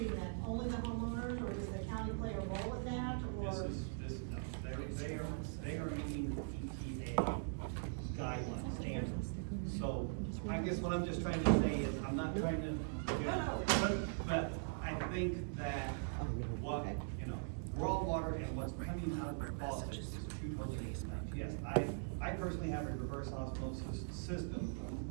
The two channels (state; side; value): silent; left; digital silence